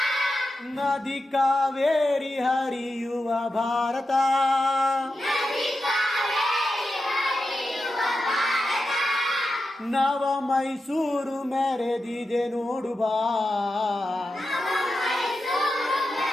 ನದಿ ಕಾವೇರಿ ಹರಿಯುವ ಭಾರತ, ನವ ಮೈಸೂರು ಮೆರೆದಿದೆ ನೋಡು ಬಾ,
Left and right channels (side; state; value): both; normal; correlation 0.90